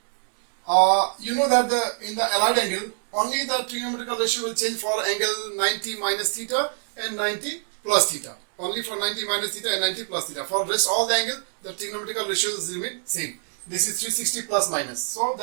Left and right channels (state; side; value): silent; left; digital silence